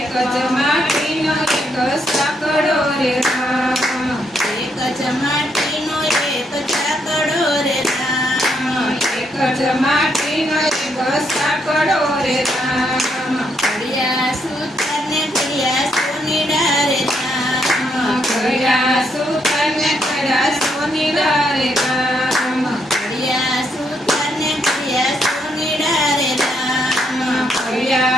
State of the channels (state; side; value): normal; both; correlation 0.76